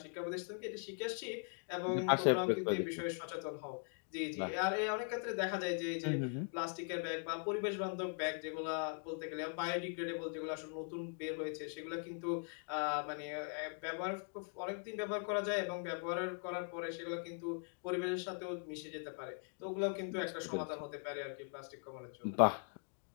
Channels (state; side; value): silent; right; 51 dB below the other